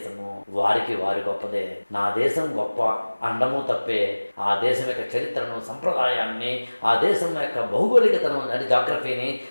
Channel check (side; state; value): both; inverted; correlation -1.00